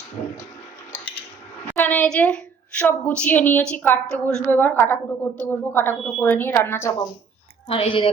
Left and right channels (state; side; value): quieter; left; 5.8 dB